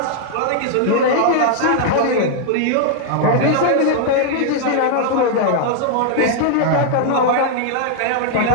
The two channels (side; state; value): both; different; correlation 0.00